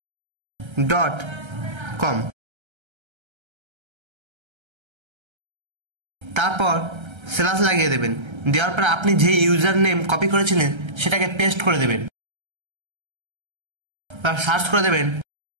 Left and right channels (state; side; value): late; left; 1.3 ms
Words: তারপর স্ল্যাশ লাগিয়ে দেবেন। দেওয়ার পর আপনি যে ইউজার নেম কপি করেছিলেন সেটাকে পেস্ট করে দেবেন। সার্চ করে দেবেন।